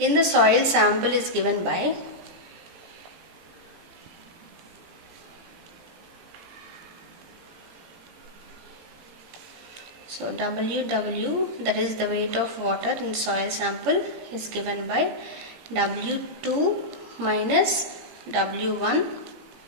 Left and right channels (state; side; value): late; left; 17 ms